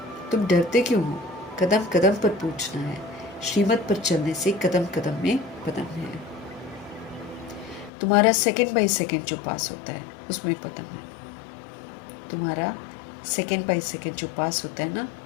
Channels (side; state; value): right; drops out; at 7.9 s